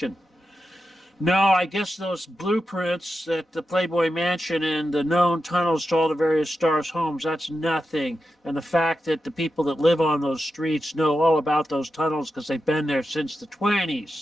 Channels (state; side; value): normal; both; correlation 0.89